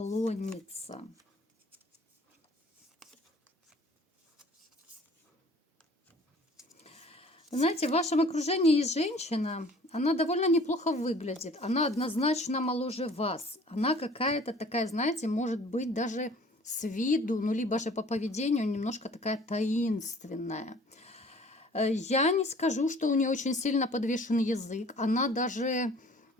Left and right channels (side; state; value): both; normal; correlation 0.51